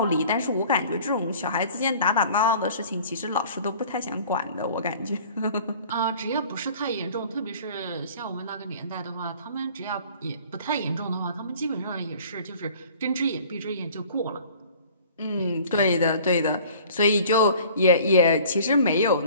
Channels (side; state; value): both; inverted; correlation -0.48